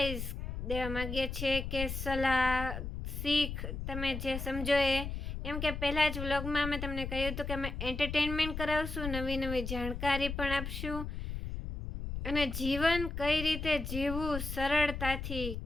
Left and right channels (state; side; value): noise; left; rumble, 5 dB below the sound